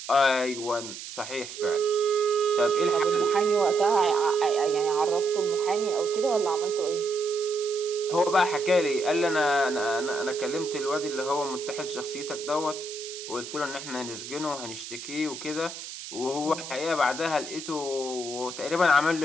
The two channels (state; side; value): noise; right; hiss, 11 dB below the sound